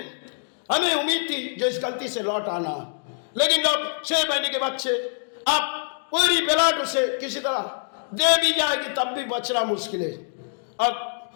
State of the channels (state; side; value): silent; right; 62 dB below the other